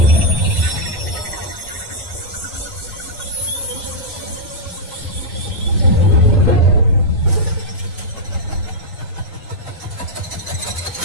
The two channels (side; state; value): both; normal; correlation -0.05